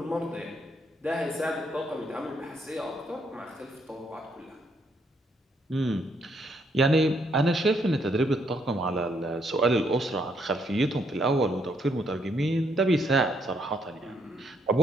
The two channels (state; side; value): normal; both; correlation 0.72